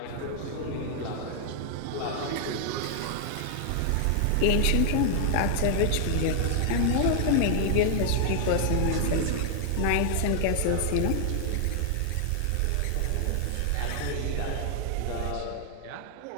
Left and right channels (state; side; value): different; both; correlation 0.00